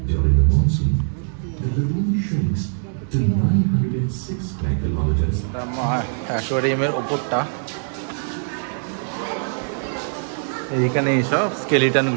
During the monsoon, the lagoon shrinks to 906 square kilometers. অ্যাকোয়ারিয়ামের ওপরটা, এইখানে এইসব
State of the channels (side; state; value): left; silent; digital silence